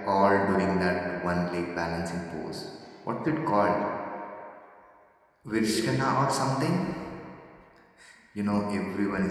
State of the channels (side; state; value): both; identical; correlation 1.00